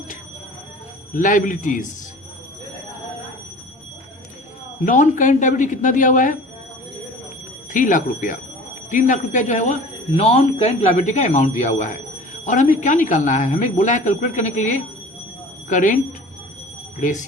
liabilities. Non-current liability कितना दिया हुआ है? 3 लाख रुपया. 3 लाख रुपया जो है वो नॉन करेंट लायबिलिटी का अमाउंट दिया हुआ है. और हमें क्या निकालना है? हमें बोला है कैलकुलेट करने के लिए करेंट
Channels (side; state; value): both; normal; correlation 0.42